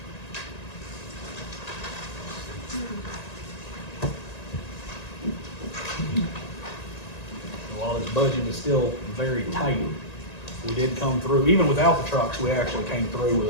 While this budget is still very tight, we did come through, even without the trucks, we actually came through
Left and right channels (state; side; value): late; right; 1.9 ms